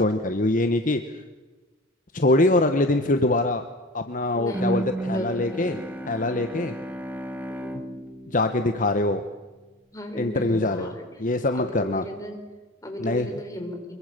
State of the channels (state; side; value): normal; both; correlation 0.35